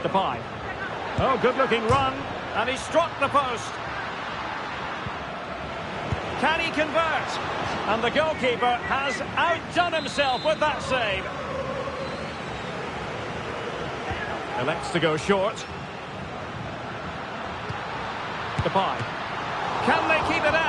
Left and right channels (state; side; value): identical; both; correlation 1.00